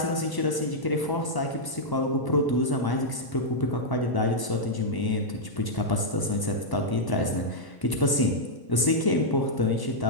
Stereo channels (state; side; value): late; right; 1.0 ms